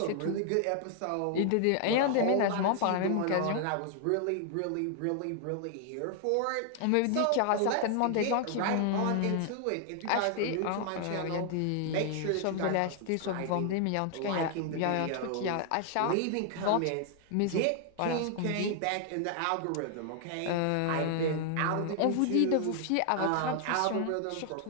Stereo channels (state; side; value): different; both; correlation 0.00